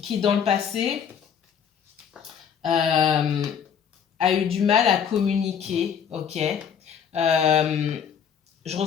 dans le passé, a eu du mal à communiquer, ok? Je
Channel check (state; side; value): quieter; right; 7.7 dB